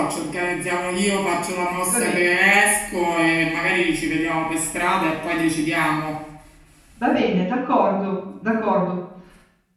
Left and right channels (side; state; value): both; identical; correlation 1.00